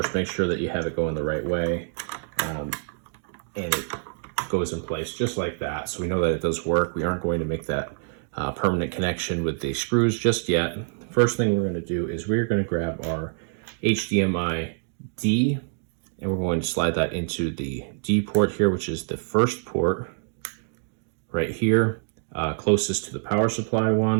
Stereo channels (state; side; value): silent; left; digital silence